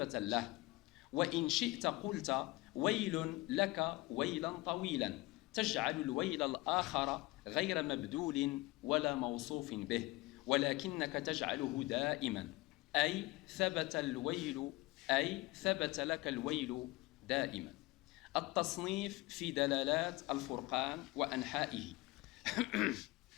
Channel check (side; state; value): right; quieter; 21.4 dB